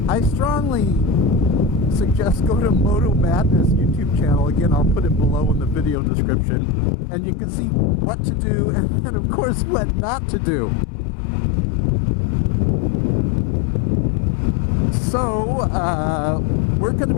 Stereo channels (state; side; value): drops out; right; at 6.0 s